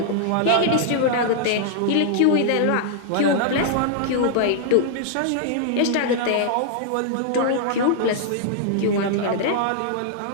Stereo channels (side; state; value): both; different; correlation -0.01